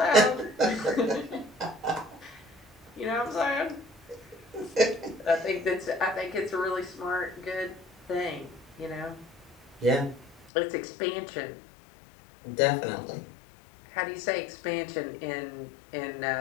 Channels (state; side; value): drops out; right; at 10.5 s